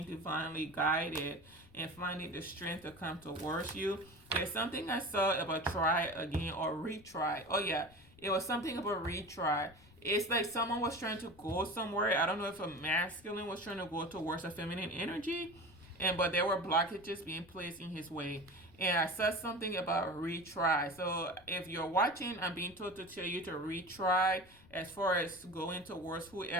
divinely guided and finding the strength to come towards you. There's something I saw about try again or retry. Oh yeah, it was something about retry. It's like someone was trying to go somewhere. I don't know if a masculine was trying to go towards a feminine energy, but there were blockages being placed in his way. And I said something about retry. So if you're watching, I'm being told to tell you to retry as far as going towards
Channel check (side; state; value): left; noise; rumble, 24 dB below the sound